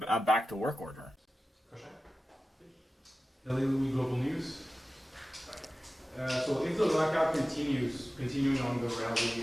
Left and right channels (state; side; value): normal; both; correlation 0.95